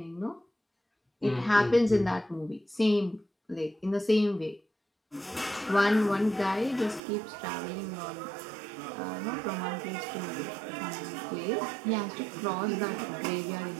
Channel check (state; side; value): drops out; left; at 7.0 s